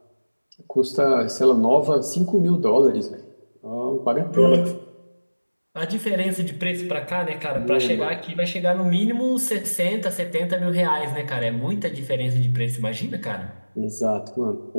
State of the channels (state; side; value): inverted; both; correlation -1.00